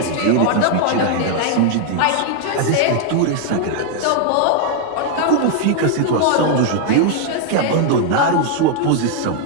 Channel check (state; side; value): different; both; correlation 0.00